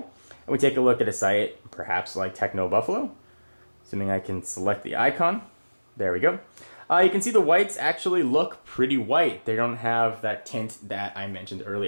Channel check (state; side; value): inverted; both; correlation -1.00